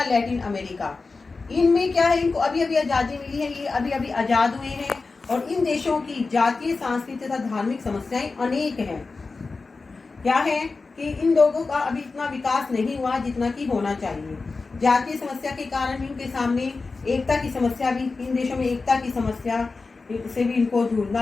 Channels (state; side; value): quieter; right; 4.0 dB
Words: लैटिन अमेरिका, इनमें क्या है, इनको अभी अभी आज़ादी मिली है, ये अभी अभी आज़ाद हुए हैं और इन देशों की जातीय सांस्कृतिक तथा धार्मिक समस्याएं अनेक हैं। क्या है कि इन लोगों का अभी इतना विकास नहीं हुआ जितना कि होना चाहिए। जातीय समस्या के कारण इनके सामने एकता की समस्या भी, इन देशों में एकता की समस्या से भी इनको